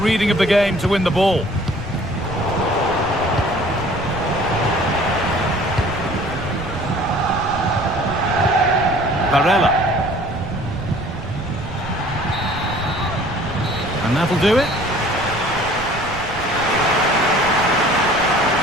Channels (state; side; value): noise; right; rumble, 13 dB below the sound